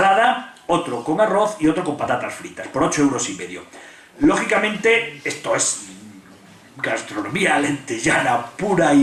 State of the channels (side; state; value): both; identical; correlation 1.00